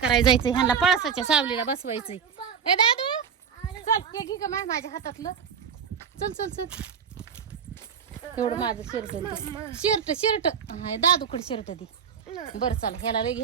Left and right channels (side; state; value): left; quieter; 7.1 dB